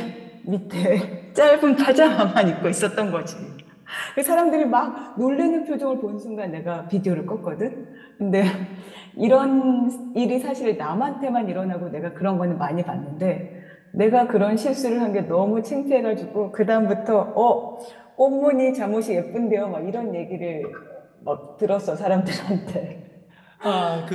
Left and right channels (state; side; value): identical; both; correlation 1.00